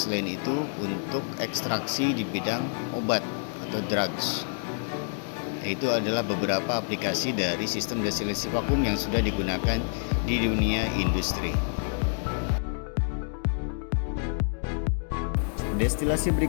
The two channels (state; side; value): silent; right; digital silence